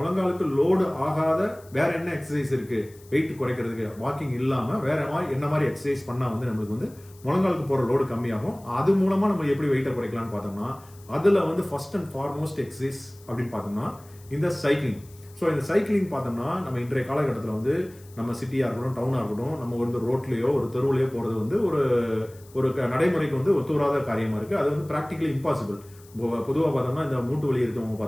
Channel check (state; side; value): noise; left; hiss, 25 dB below the sound